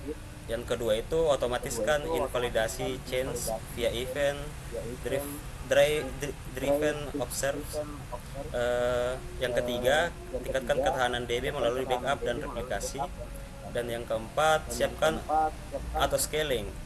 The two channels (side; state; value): both; identical; correlation 1.00